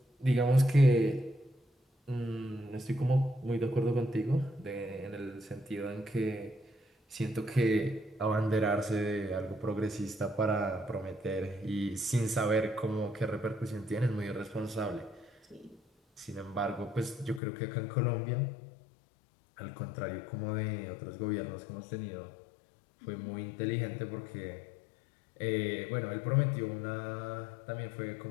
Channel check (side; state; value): right; drops out; at 17.4 s